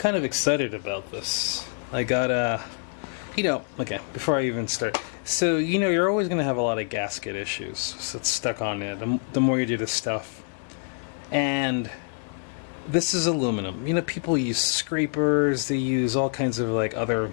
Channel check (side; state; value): right; silent; 61 dB below the other